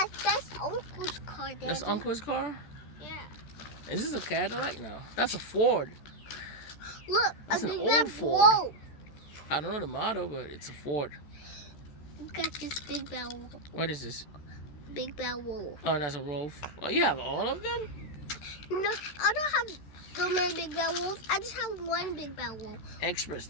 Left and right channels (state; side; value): late; right; 14 ms